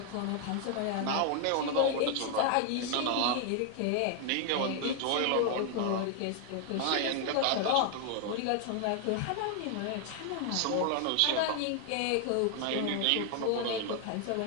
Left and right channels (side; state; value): both; different; correlation 0.00